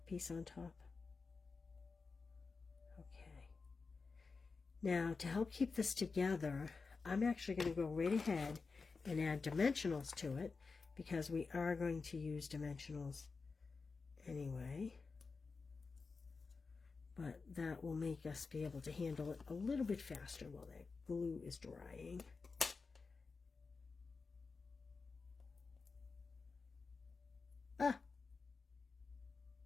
piece on top. Okay. Now, to help keep this together, I'm actually going to go right ahead and add dimensionals to it because we are going to use dimensionals anyway. But that will make us be able to handle it a little bit faster while that glue is drying. Ah!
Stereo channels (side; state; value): right; quieter; 4.5 dB